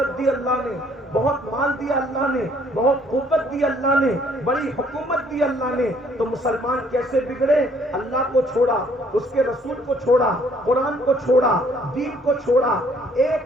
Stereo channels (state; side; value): normal; both; correlation 0.62